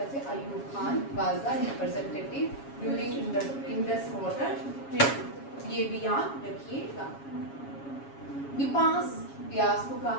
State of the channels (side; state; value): right; late; 7.2 ms